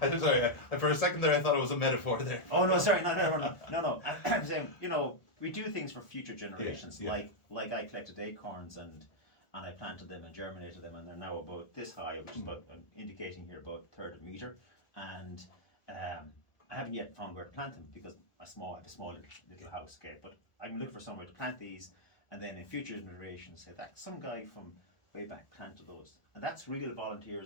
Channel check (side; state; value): right; late; 1.4 ms